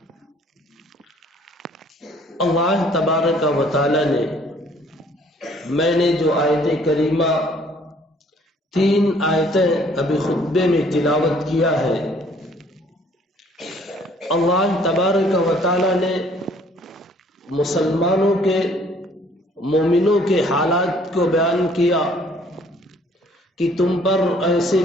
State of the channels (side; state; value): both; normal; correlation 0.59